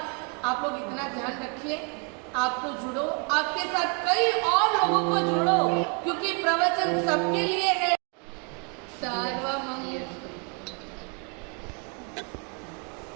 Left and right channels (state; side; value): quieter; left; 37.0 dB